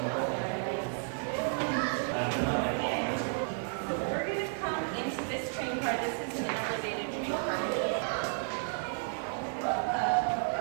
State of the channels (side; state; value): left; silent; digital silence